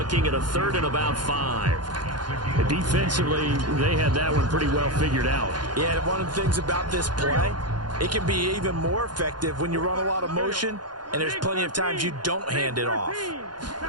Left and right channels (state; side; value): late; left; 0.71 ms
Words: at a 3rd and about 5. Defensively, they had that one pretty well figured out. Yeah, and one of the things about this play, it can be even more effective when you run a lot of motion, and there's plenty of times you don't hand it off.